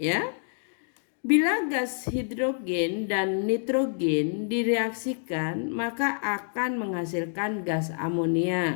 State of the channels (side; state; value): right; silent; 60 dB below the other